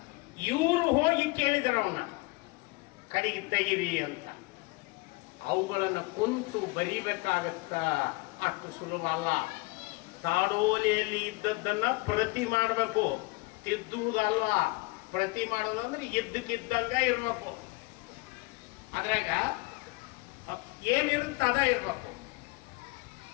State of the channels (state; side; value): quieter; right; 24.7 dB